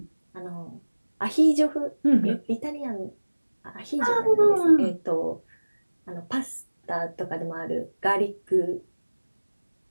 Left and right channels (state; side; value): inverted; both; correlation -1.00